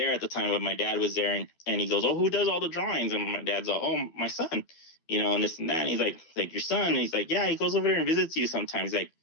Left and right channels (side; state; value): right; late; 12 ms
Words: at the time, but my dad was there, and he goes, oh, who does all the drawings? And my dad's like, oh, my son, and this and that. And he's like your son? And he's like, yeah, he goes over there and visits you sometimes. He's like,